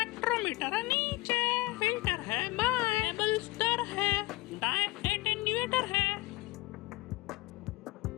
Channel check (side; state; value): right; quieter; 20.1 dB